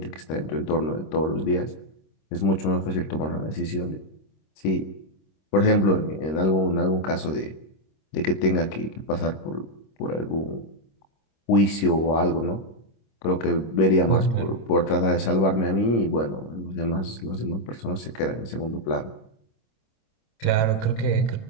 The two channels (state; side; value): late; right; 26 ms